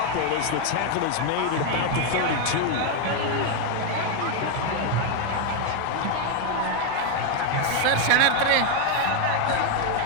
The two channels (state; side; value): different; both; correlation 0.01